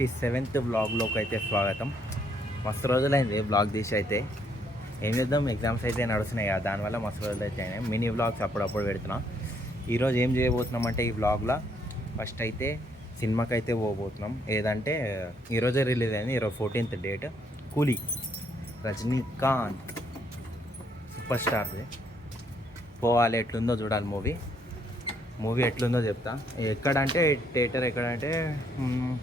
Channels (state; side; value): normal; both; correlation 0.70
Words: వ్లాగ్లోకి అయితే స్వాగతం. మస్తు రోజులైంది వ్లాగ్ తీసి. అయితే ఏం చేద్దాం, ఎగ్జామ్స్ అయితే నడుస్తున్నాయి కదా, దానివల్ల మస్తు రోజులు అయితే అయినాయి. మినీ వ్లాగ్స్ అప్పుడప్పుడు పెడుతున్నాం. ఈరోజు ఏం చేయబోతున్నాం అంటే, ఈ వ్లాగ్లో ఫస్ట్ అయితే సినిమాకి అయితే పోబోతున్నాం. ఏదంటే ఈరోజే రిలీజ్ అయింది, ఈరోజు 14th డేట్. కూలీ, రజనీకాంత్ సూపర్ స్టార్ది. పోవాలి, ఎట్లుందో చూడాలి. మూవీ ఎట్లుందో చెప్తా. ఎక్కడంటే థియేటర్ ఎక్కడంటే